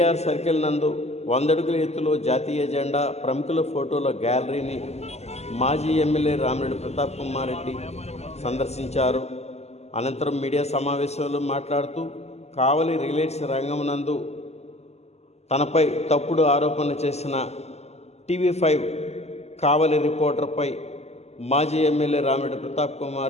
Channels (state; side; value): late; right; 0.31 ms